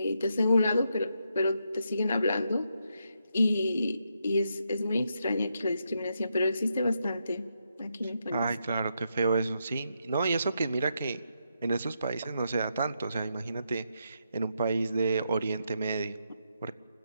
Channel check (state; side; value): inverted; both; correlation -0.82